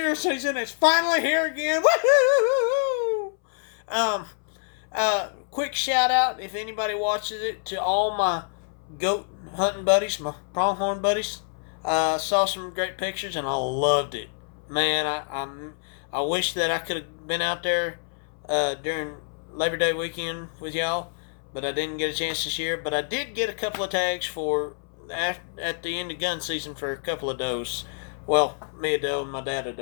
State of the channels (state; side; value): silent; right; 60 dB below the other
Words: season. It's finally here again. Woohoo! Quick shout out, if anybody watches it, to all my goat hunting buddies, my pronghorn buddies. Saw some great pictures and I loved it. Man, I wish that I could have been out there during Labor Day weekend with y'all, but I didn't get a chance this year. But I did get a couple of tags for at the end of gun season for a couple of does. Well, me a doe and my dad a